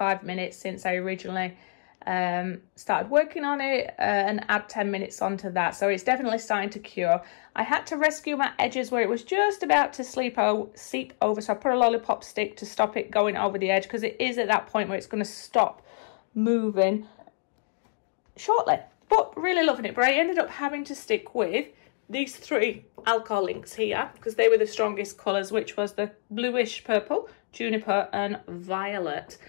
minutes since I originally started working on it, and add 10 minutes onto that, so it's definitely starting to cure. I had to rescue my edges where it was just about to seep over, so I put a lollipop stick to stop it going over the edge, because it is at that point where it's going to stop moving shortly. But really loving it. But I ended up having to stick with these 3 alcohol inks here, because they were the strongest colours, which was the bluish purple, juniper and violet.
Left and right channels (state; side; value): silent; right; digital silence